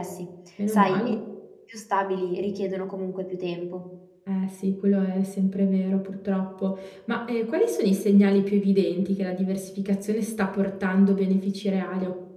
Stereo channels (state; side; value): identical; both; correlation 1.00